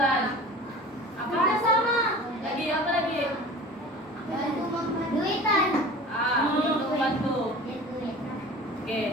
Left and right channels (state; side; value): normal; both; correlation 0.39